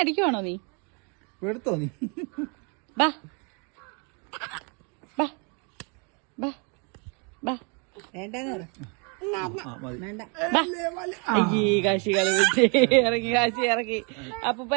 നീ? എടുത്തോ നീ? ബാ ബാ ബാ ബാ. അയ്യേ കാശി കളിച്ച് ഇറങ്ങി. കാശി ഇറക്കി. അപ്പൂപ്പ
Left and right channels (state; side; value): quieter; left; 35.0 dB